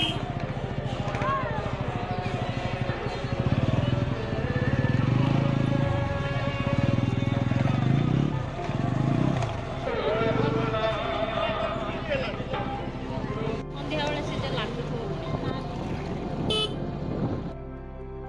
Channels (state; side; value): identical; both; correlation 1.00